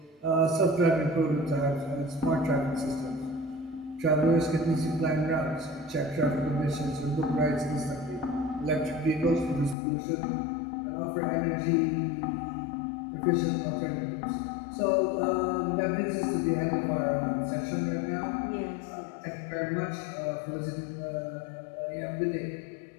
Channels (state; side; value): drops out; right; at 9.8 s